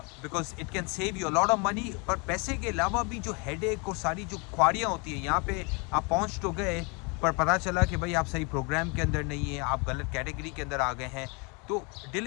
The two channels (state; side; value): quieter; right; 31.7 dB